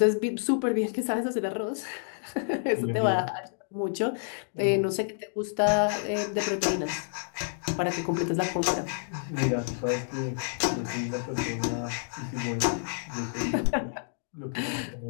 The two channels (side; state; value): right; silent; digital silence